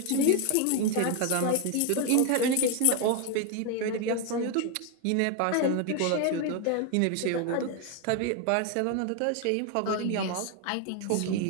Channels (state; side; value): different; both; correlation 0.01